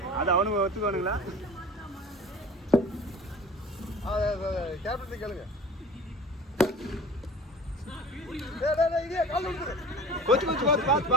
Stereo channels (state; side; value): normal; both; correlation 0.41